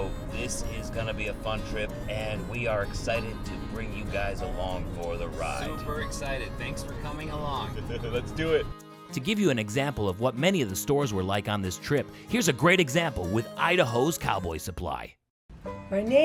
this is gonna be a fun trip, and we are excited to bring you guys along for the ride. Super excited. Thanks for coming along. Let's do it. To give you an example of what many of the stores were like on this trip, here's a great example with Idaho's Cowboy Supply. My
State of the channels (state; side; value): identical; both; correlation 1.00